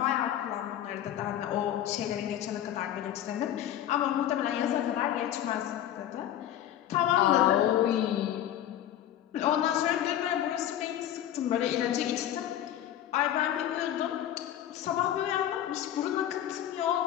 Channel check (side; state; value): right; quieter; 11.5 dB